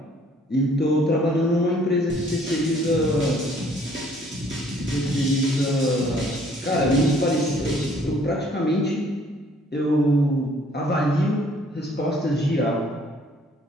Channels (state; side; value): normal; both; correlation 0.60